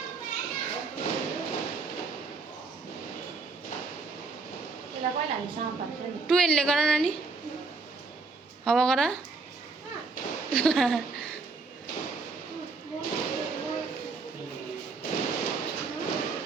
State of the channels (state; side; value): quieter; left; 4.2 dB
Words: टुवेलले गर नानी, हावा गर।